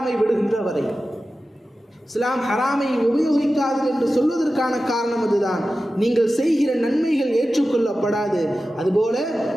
விடுகின்ற வரை. இஸ்லாம் ஹராமை உபயோகிக்காது என்று சொல்வதற்கான காரணம் அதுதான். நீங்கள் செய்கிற நன்மைகள் ஏற்றுக்கொள்ளப்படாது, அதுபோல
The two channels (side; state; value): both; normal; correlation 0.94